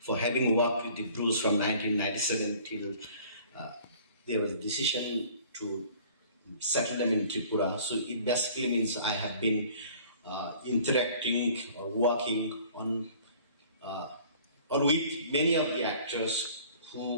for having worked with the Brus from 1997 till there was a decision to settle them in Tripura. So it basically means I have been interacting or working on or with many of the actors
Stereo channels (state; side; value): inverted; both; correlation -0.51